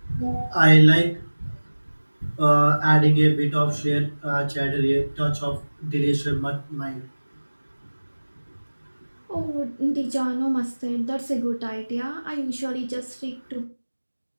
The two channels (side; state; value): both; inverted; correlation -1.00